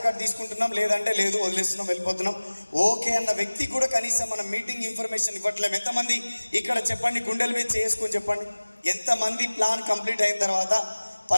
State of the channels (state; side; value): inverted; both; correlation -1.00